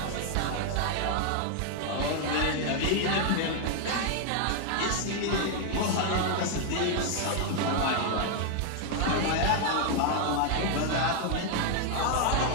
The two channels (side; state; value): both; different; correlation 0.00